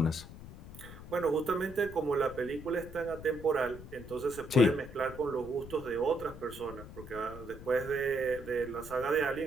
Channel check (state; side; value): noise; left; rumble, 14 dB below the sound